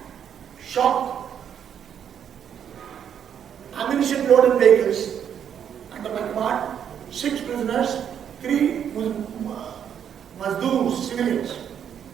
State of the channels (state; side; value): quieter; left; 8.7 dB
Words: shocked. Ammunition loaded vehicles under my command, 6 prisoners, 3 Mazdoors, civilians.